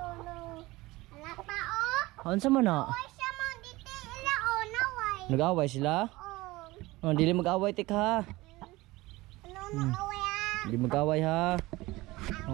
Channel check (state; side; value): quieter; left; 20.2 dB